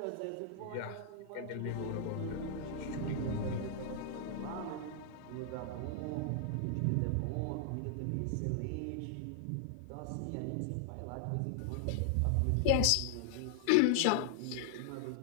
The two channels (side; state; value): both; different; correlation -0.01